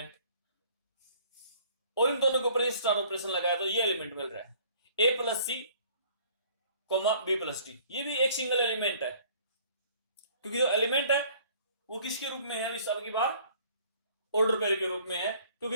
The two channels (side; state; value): both; inverted; correlation -0.55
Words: और इन दोनों के ऊपर स्टार ऑपरेशन लगाया तो ये एलिमेंट मिल रहा है, ए plus C comma B plus D. ये भी एक सिंगल एलिमेंट है, क्योंकि जो एलिमेंट है वो किसके रूप में है, इस अब की बार ऑर्डर पेयर के रूप में है,